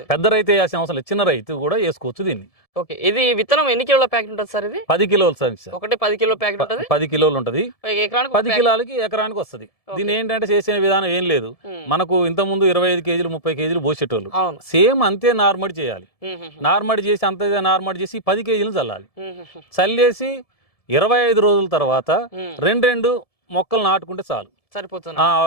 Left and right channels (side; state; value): right; late; 1.7 ms